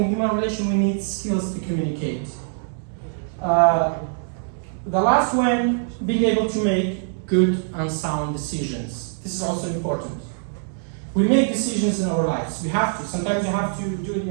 human relation, we need skills to communicate. The last one, being able to make good and sound decisions. This is also important. We make decisions in our lives. We have to. Sometimes you have to do it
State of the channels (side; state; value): left; silent; digital silence